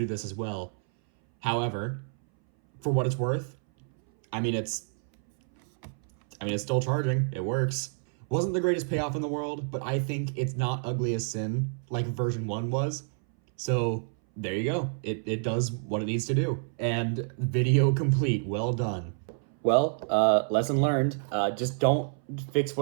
this as well. However, for what it's worth, I mean, it's still charging. It works. Wasn't the greatest payoff in the world, but I think it's not ugly as sin like version 1 was. So there you go. It does what it needs to do. And video complete. Well done. Well, lesson learned. Just don't fix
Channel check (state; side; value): silent; left; 59 dB below the other